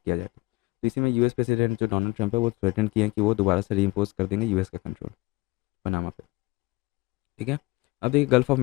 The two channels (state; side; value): quieter; right; 22.4 dB